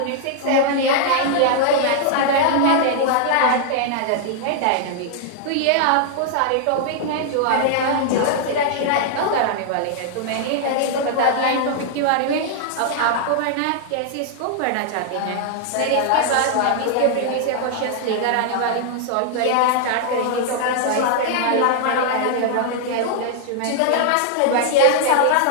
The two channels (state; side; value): different; both; correlation -0.01